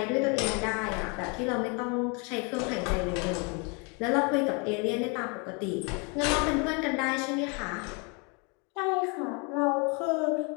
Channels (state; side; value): quieter; right; 32.9 dB